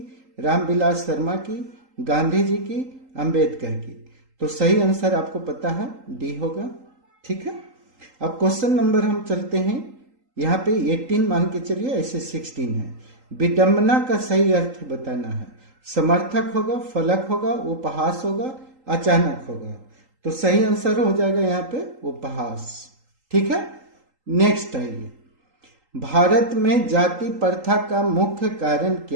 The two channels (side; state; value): left; late; 3.8 ms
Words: रामविलास शर्मा की, गांधी जी की, अंबेडकर की। तो सही आंसर आपको पता है डी होगा। ठीक है, अब क्वेश्चन नंबर हम चलते हैं, यहाँ पे 18 मान के चलिए, ऐसे 16 है। विडंबना का सही अर्थ बताना है। समर्थक होगा, फलक होगा, उपहास होगा, अचानक होगा। तो सही आंसर हो जाएगा यहाँ पे उपहास। ठीक है, नेक्स्ट आइए, भारत में जाति प्रथा का मुख्य कारण